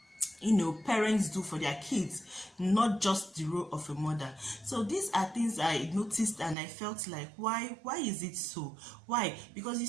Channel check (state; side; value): drops out; left; at 6.6 s